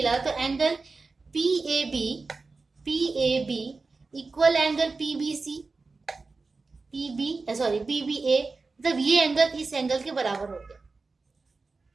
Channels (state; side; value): quieter; left; 4.0 dB